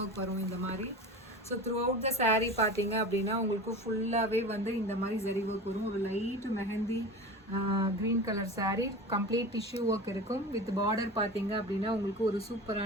ஒர்க் வரும் இந்த மாதிரி. So through out the saree பார்த்தீங்க அப்படின்னா உங்களுக்கு ஃபுல்லாகவே வந்து இந்த மாதிரி ஜரி ஒர்க் வரும். ஒரு light mehndi green colour saree, complete tissue work இருக்கும். வித் பார்டர் பார்த்தீங்க அப்படின்னா உங்களுக்கு ஒரு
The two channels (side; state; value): both; normal; correlation 0.32